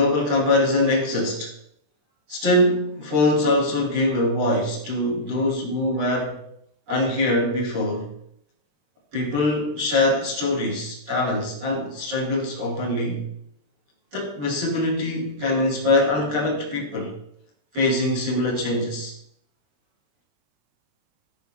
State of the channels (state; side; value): late; left; 20 ms